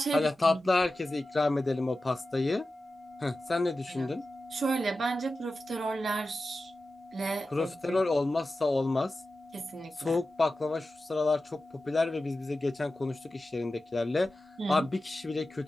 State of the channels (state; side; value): normal; both; correlation 0.93